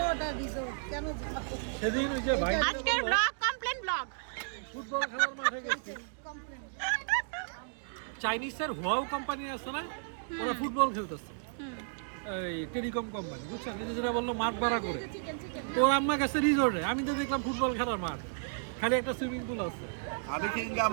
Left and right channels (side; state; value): left; silent; digital silence